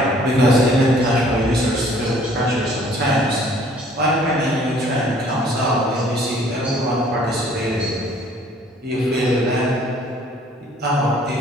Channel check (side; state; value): both; normal; correlation 0.57